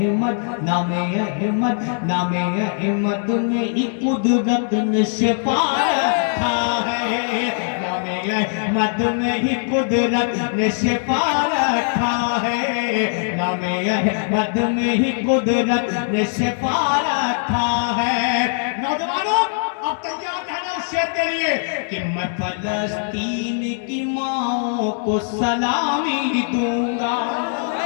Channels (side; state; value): right; silent; digital silence